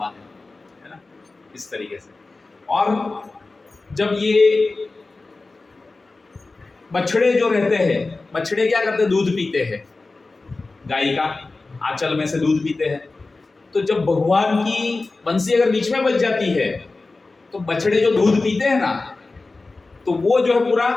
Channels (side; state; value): right; quieter; 3.5 dB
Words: है ना, इस तरीके से। और जब ये बछड़े जो रहते हैं, बछड़े क्या करते हैं? दूध पीते हैं, गाय का आंचल में से दूध पीते हैं। तो जब भगवान की बंसी अगर बीच में बज जाती है तो बछड़े जो दूध पीते हैं ना, तो वो जो है पूरा